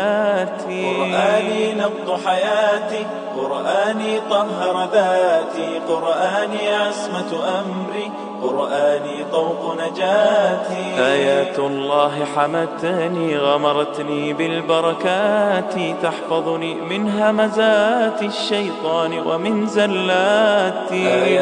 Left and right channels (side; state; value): both; identical; correlation 1.00